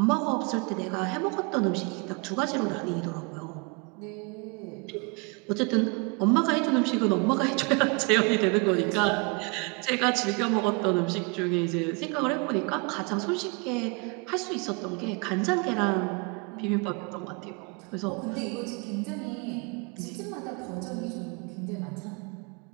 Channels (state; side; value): quieter; left; 30.8 dB